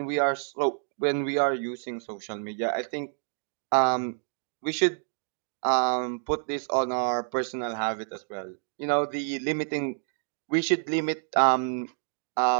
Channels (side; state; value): left; silent; digital silence